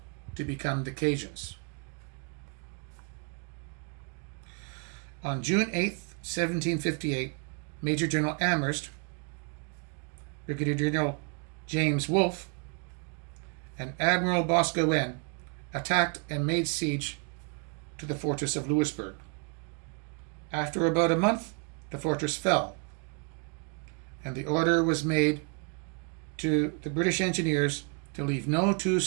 to become the Cajuns. On June 8, 1758, Major General Amherst, Brigadier General James Wolfe, and Admiral Boscawen attacked and made siege to the fortress of Louisbourg. After about a month, the fortress fell, and the order was made to the British engineers to leave no 2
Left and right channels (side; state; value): left; quieter; 37.8 dB